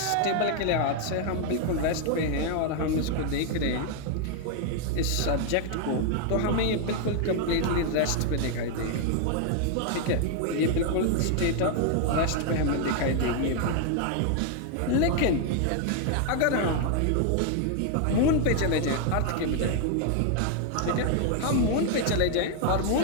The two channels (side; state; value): both; different; correlation 0.00